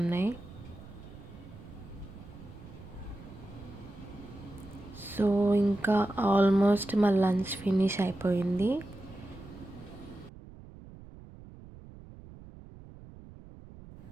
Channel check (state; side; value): noise; right; rumble, 17 dB below the sound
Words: సో ఇంకా ఆల్మోస్ట్ మా లంచ్ ఫినిష్ అయిపోయింది.